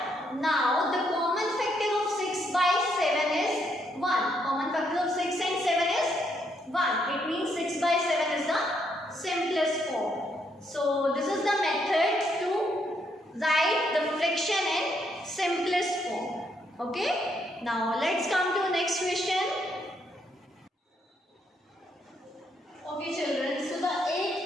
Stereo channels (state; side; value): normal; both; correlation 0.75